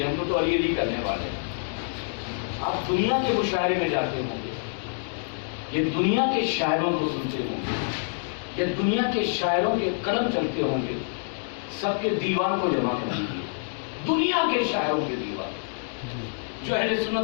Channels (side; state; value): right; silent; digital silence